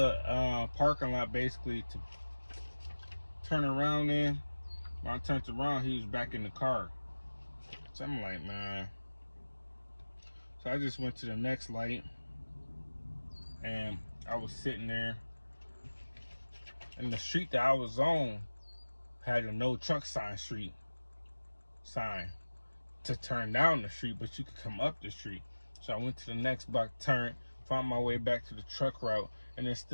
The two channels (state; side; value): inverted; both; correlation -1.00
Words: parking lot basically to turn around in. When I turned around, he was back in the car. So I'm like, man. So I just went to the next light, and I was sitting there. And the street that I was on had a no truck sign to turn down the street, but you could come up the street. So I went to the next block, turned, found my way back to the truck route, and then